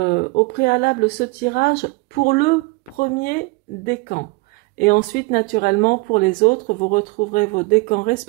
préalable ce tirage pour le premier décan. Et ensuite, naturellement, pour les autres, vous retrouverez vos décans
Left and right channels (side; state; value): left; quieter; 26.1 dB